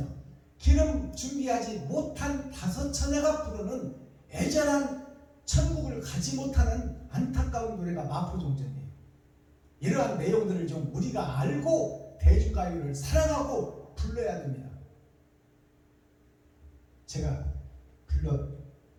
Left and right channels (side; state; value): both; identical; correlation 1.00